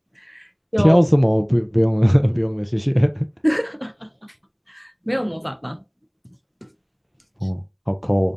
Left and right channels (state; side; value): identical; both; correlation 1.00